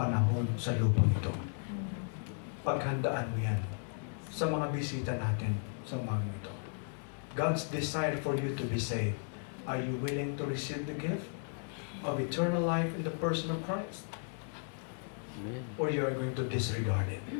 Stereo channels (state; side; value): silent; right; 54 dB below the other